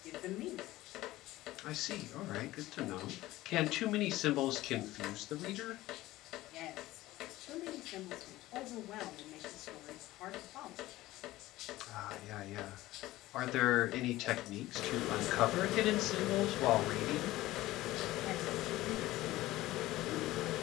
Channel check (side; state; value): right; quieter; 17.0 dB